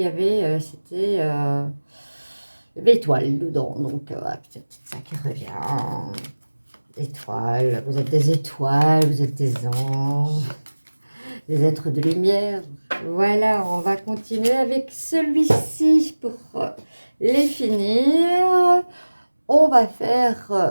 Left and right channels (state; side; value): inverted; both; correlation -1.00